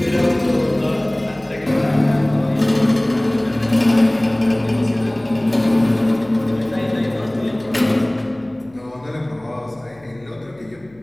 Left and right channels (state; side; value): noise; left; hum, 28 dB below the sound